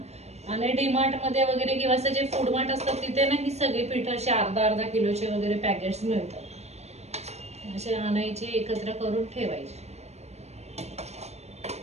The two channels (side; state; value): left; late; 0.31 ms